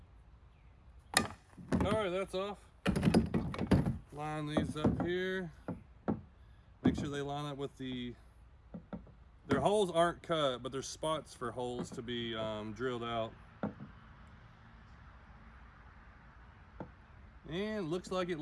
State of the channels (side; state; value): both; identical; correlation 1.00